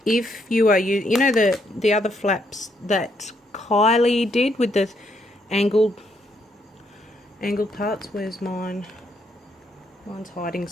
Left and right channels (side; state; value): both; normal; correlation 0.74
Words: if you are you know the other flaps that Kylie did with the angled parts. Where's mine? Mine's hiding